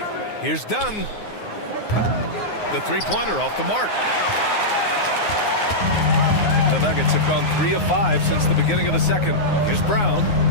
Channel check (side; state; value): right; late; 9.6 ms